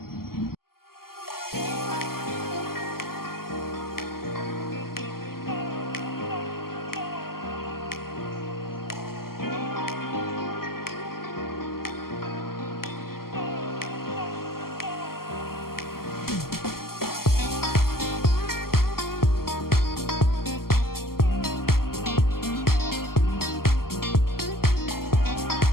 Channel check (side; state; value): right; late; 0.92 ms